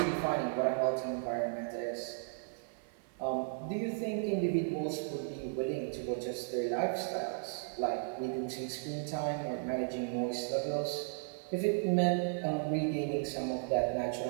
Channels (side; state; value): left; silent; 54 dB below the other